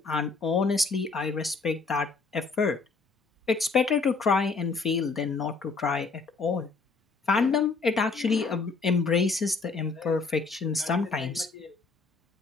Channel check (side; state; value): right; quieter; 4.3 dB